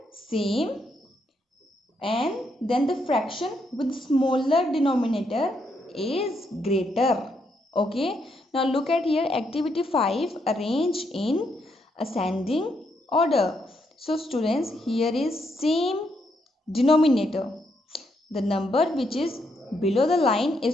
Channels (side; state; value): both; normal; correlation 0.77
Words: same and then the fraction with smaller denominator is greater. Okay, now look at here, activity 5, arrange in ascending order. So students, here is same denominator. The number which is below the line